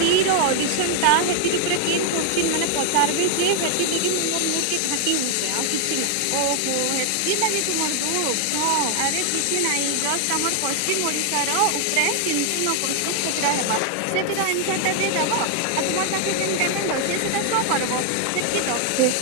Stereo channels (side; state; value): both; different; correlation 0.00